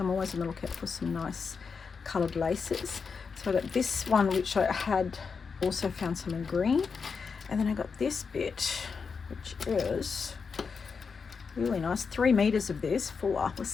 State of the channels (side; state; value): right; quieter; 5.4 dB